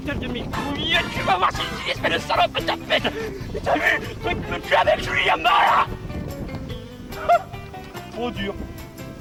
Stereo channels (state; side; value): identical; both; correlation 1.00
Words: de mes couilles, tu vas voir si tu espèce de salope de tapette. T'as vu, truc me tue avec Julie Yamala. Trop dur.